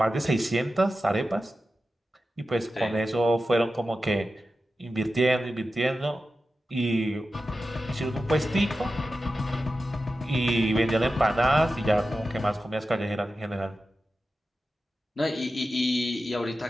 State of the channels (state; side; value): normal; both; correlation 0.92